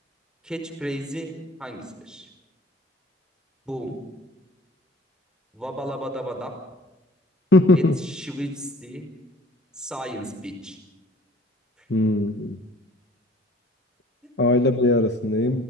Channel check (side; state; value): both; normal; correlation 0.49